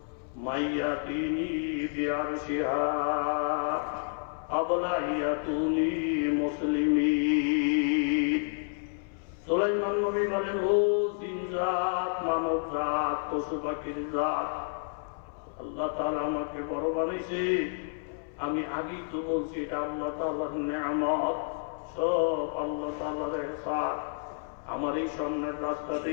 من يأتيني بعرشها قبل أن يأتوني مسلمين সুলাইমান নবী বলেন, ও জিন জাত, মানব জাত, পশু পাখির জাত, আল্লাহ তাআলা আমাকে বড় বানাইছে। আমি আগেই তো বলছি এটা আল্লাহ তাআলার নেয়ামত, সব আল্লাহ তাআলার ইহসান। আমার এই সামনের রাস্তা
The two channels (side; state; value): right; silent; 58 dB below the other